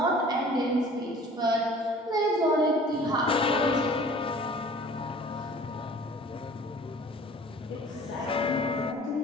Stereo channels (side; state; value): both; normal; correlation 0.48